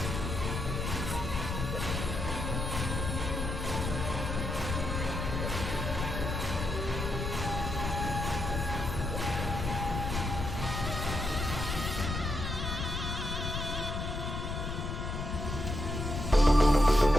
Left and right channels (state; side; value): noise; left; rumble, 3 dB below the sound